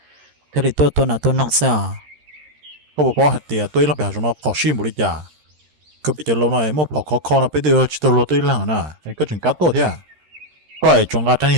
thế thì tôi nào tôi nong sao có một hạt tiền tôi là bèo rồi nó khó xin một đi chả cứ bị chờ lâu này một bỏ khó nó bây giờ chỉ tôi lo tôi là nè có chuyện cá tốt thế à có ai trồng cá thanh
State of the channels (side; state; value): left; late; 13 ms